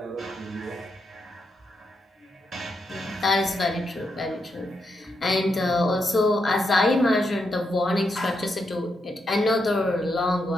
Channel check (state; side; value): normal; both; correlation 0.82